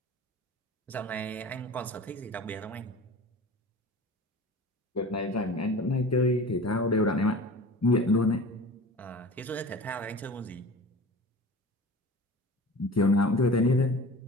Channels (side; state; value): both; normal; correlation 0.38